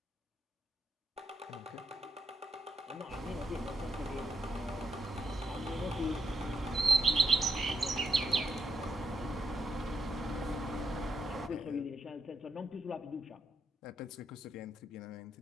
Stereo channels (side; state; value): both; normal; correlation 0.80